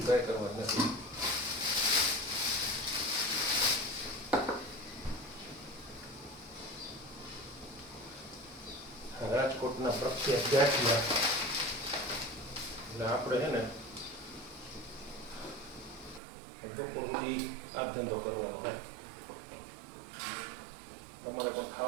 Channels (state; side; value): drops out; left; at 16.2 s